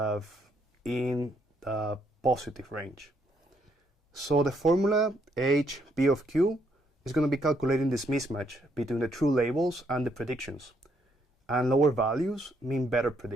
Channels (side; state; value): both; normal; correlation 0.72